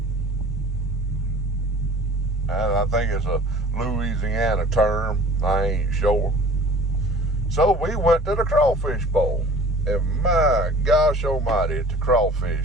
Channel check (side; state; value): both; normal; correlation 0.46